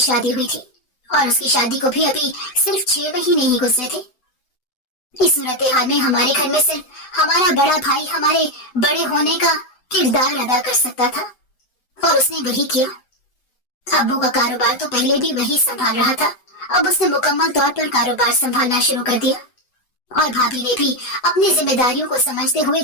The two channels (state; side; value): late; right; 7.9 ms